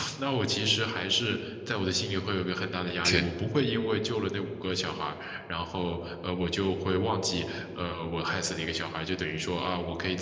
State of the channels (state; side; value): identical; both; correlation 1.00